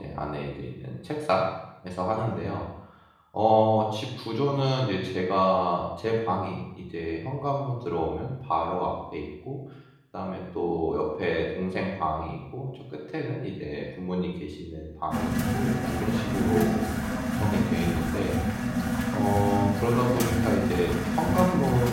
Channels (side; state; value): both; identical; correlation 1.00